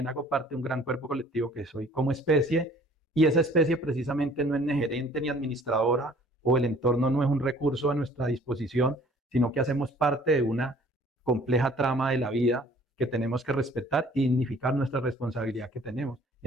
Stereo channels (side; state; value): both; normal; correlation 0.54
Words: hago parte de un gran cuerpo colectivo que soy como especie, y esa especie precisamente no es ni gerente ni administradora, o el entorno no es un recurso a nuestra disposición, sino que hacemos parte de una compleja trama de la vida que tenemos que respetar y dignificar nuestra responsabilidad que tenemos